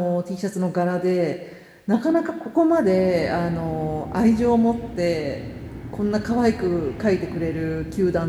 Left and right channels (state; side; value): identical; both; correlation 1.00